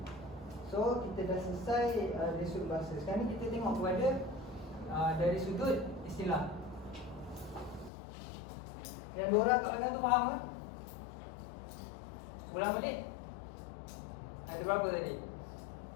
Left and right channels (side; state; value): right; drops out; at 7.9 s